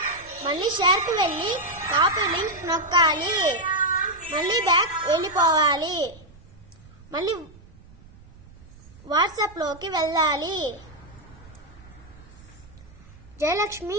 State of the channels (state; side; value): noise; right; rumble, 23 dB below the sound